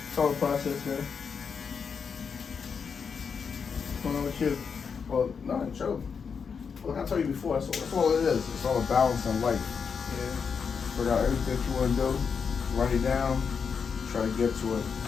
all a process, man. What's going on with you? Well, no, chill. Look, I told you before, that's all it is. It's all a balance in life. Yeah. Figure out everything you want to do, write it down, try to get to it as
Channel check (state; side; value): quieter; right; 6.1 dB